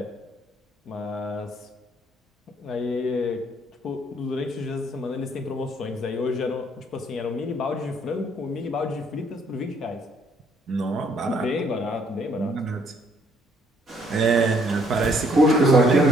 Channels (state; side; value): normal; both; correlation 0.65